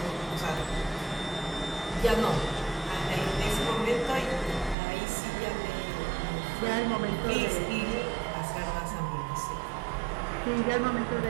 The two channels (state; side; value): drops out; left; at 4.8 s